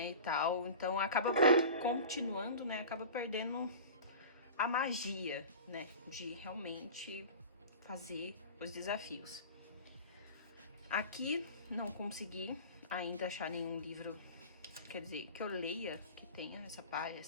e tal. Então acaba continuando, né, acaba perdendo a magia, né, de realmente fazer os desafios. Aqui não consegui ainda achar nenhum livro, quer dizer, que eu leia, que tenha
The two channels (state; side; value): inverted; both; correlation -0.35